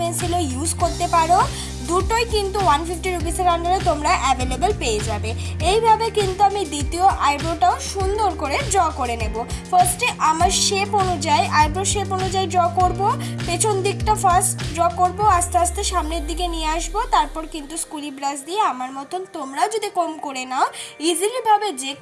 ইউজ করতে পারো, দুটোই কিন্তু 150 রুপিসের আন্ডারে তোমরা অ্যাভেলেবেল পেয়ে যাবে। এইভাবে কিন্তু আমি দ্বিতীয় আইব্রোটাও সুন্দর করে ড্র করে নেব। ফার্স্টে আমার আইব্রো শেপ অনুযায়ী ড্র করব। পেছন দিকটা ফার্স্ট ড্র করব, আস্তে আস্তে সামনের দিকে নিয়ে আসব। তারপর কিন্তু স্কুলি ব্রাশ দিয়ে আমার মতন তোমরাও যদি কম করে নাও, ইজিলিভাবে যে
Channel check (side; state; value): both; identical; correlation 1.00